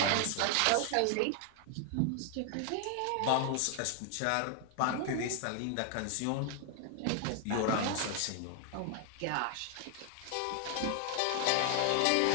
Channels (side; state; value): both; different; correlation 0.00